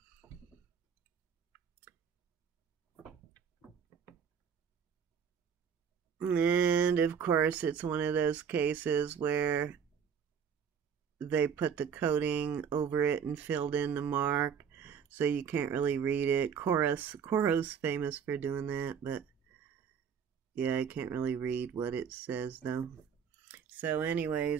And of course, it's one of those cases where they put the coating over it and filled in the mark, so you can't really read it. Coro's famous for doing that, but yeah, I can't really read what it says though. So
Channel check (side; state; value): left; quieter; 7.3 dB